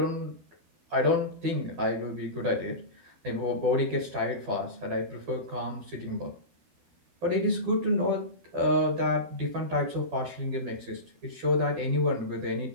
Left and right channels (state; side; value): late; left; 12 ms